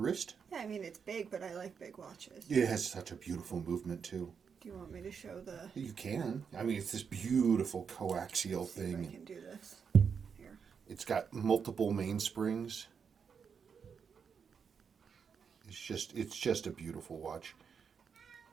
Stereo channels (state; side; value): quieter; left; 6.5 dB